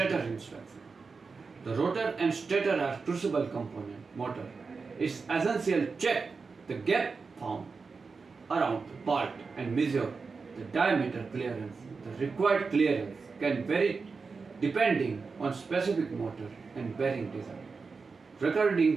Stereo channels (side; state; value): left; quieter; 4.7 dB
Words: inspection. The rotor and stator are crucible component. Motor is essential. Check the gap found around the part and measure the diameter clearance. The required clearance can vary depending on specific motor and bearing design.